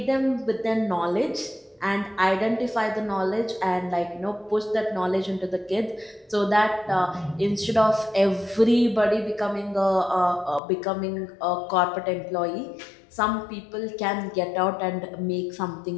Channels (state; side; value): drops out; right; at 10.6 s